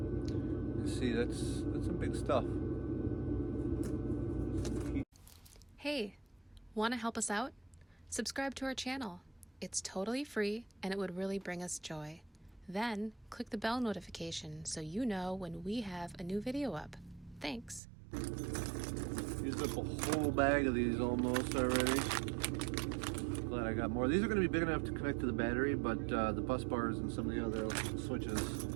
You see, that's some big stuff. Hey, want to help us out? Subscribe to our channel. It's totally free and it would really bring us joy. Then click the bell notification so you know when we have a new video up. Thanks. Used up a whole bag of these almost already. Glad I got more. These are going to be big enough to connect to the battery, but the bus bars and some of the other switches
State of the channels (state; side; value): drops out; left; at 17.8 s